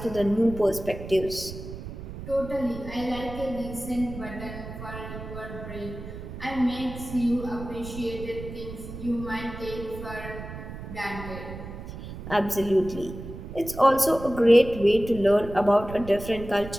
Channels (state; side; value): noise; right; rumble, 11 dB below the sound